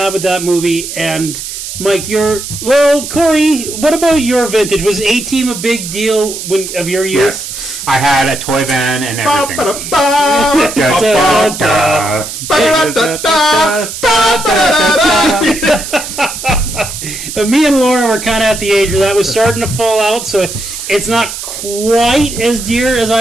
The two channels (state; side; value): noise; right; hiss, 8 dB below the sound